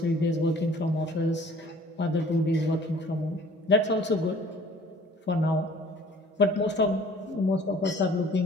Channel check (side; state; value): both; normal; correlation 0.52